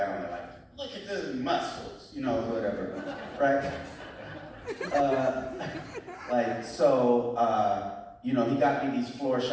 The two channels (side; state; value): both; identical; correlation 1.00